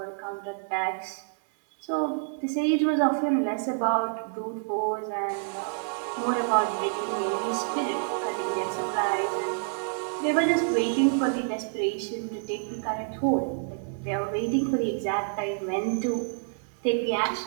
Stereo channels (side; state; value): left; silent; 59 dB below the other